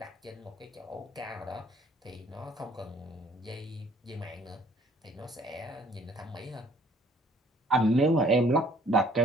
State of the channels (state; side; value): normal; both; correlation 0.59